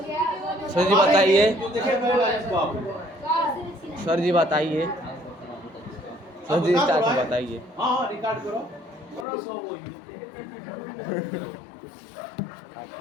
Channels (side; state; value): right; drops out; at 9.2 s